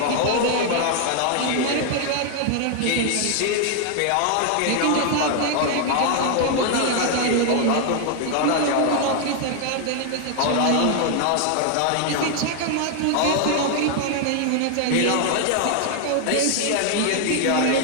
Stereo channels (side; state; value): both; different; correlation 0.00